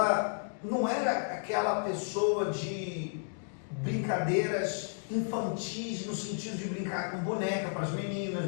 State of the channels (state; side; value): silent; right; digital silence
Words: não era aquela pessoa de brincadeiras infantis, no sentido de brincar com boneca para as meninas,